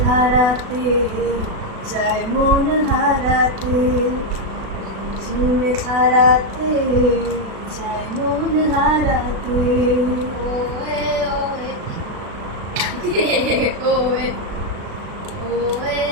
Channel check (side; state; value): left; late; 36 ms